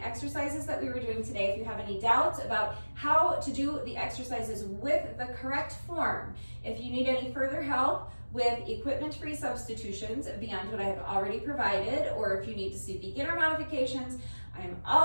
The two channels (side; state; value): both; inverted; correlation -1.00